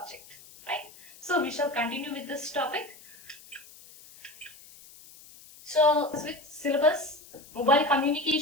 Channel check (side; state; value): left; noise; hiss, 21 dB below the sound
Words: right? So we shall continue with this topic. So with syllabus, mobile